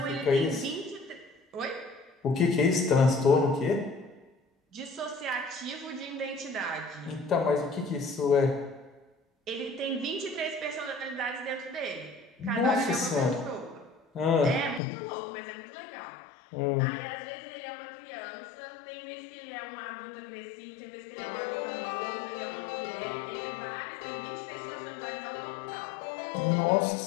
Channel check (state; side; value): drops out; right; at 14.8 s